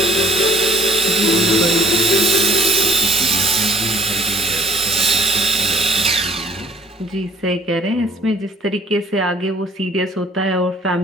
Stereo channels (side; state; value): both; normal; correlation 0.57